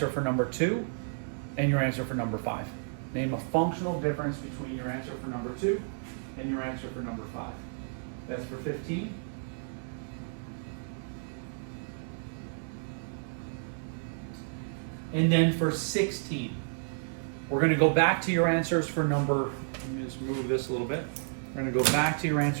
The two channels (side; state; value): left; silent; digital silence